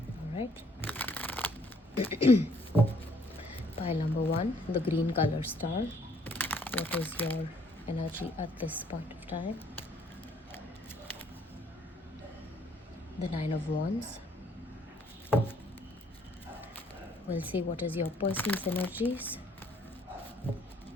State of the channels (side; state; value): both; normal; correlation 0.64